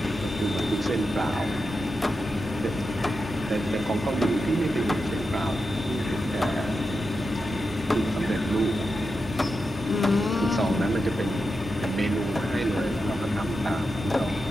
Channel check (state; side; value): normal; both; correlation 0.89